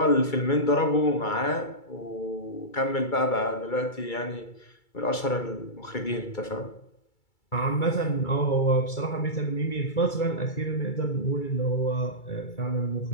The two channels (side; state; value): right; late; 2.3 ms